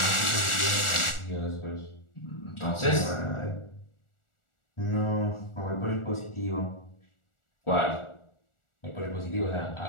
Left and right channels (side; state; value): right; late; 1.4 ms